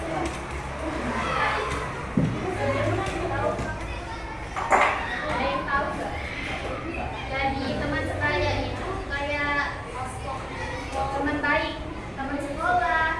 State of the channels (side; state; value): both; identical; correlation 1.00